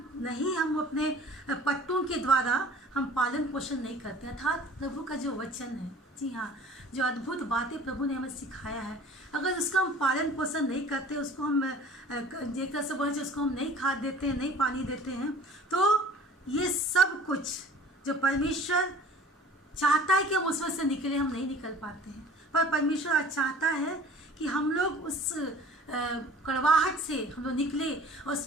अपने पट्टों के द्वारा हम पालन पोषण नहीं करते, अर्थात प्रभु का जो वचन है, जी हाँ, जो अद्भुत बातें प्रभु ने हमें सिखाया है, अगर उसका हम पालन पोषण नहीं करते, उसको हम एक तरह से बोले उसको हम नहीं खाद देते हैं, नहीं पानी देते हैं, तो ये सब कुछ जो परमेश्वर चाहता है कि हम उसमें से निकले, हम नहीं निकल पाते हैं। पर परमेश्वर आज चाहता है कि हम लोग उस कड़वाहट से हम लोग निकले और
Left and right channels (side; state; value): both; normal; correlation 0.47